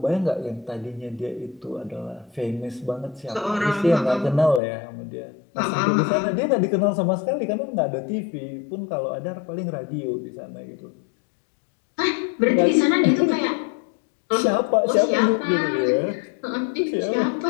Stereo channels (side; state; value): right; drops out; at 4.6 s